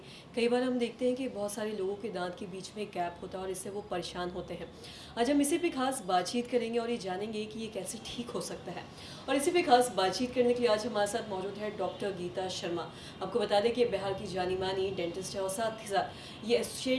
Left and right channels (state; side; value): identical; both; correlation 1.00